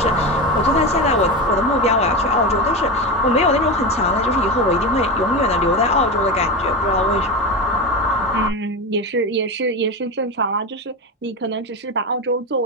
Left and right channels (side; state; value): both; normal; correlation 0.20